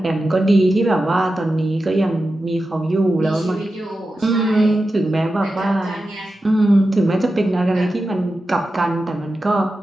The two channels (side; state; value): both; normal; correlation 0.91